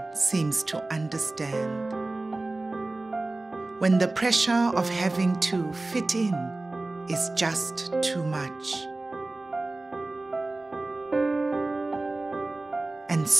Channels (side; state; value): left; quieter; 3.0 dB